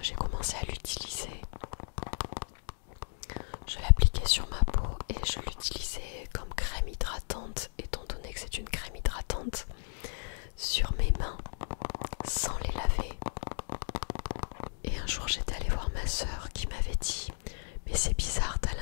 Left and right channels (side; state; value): right; silent; digital silence